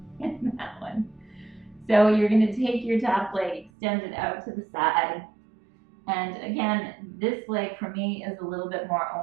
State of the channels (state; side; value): drops out; left; at 3.7 s